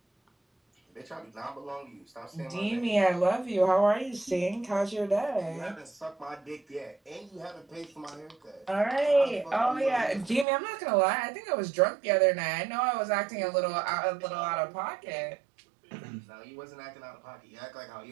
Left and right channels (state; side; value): drops out; left; at 10.5 s